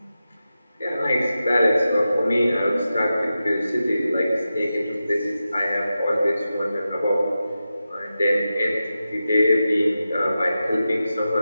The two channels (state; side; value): inverted; both; correlation -0.91